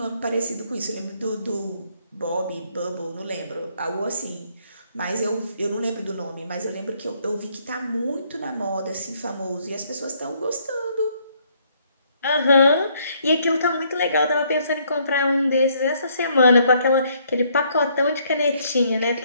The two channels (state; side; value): inverted; both; correlation -0.68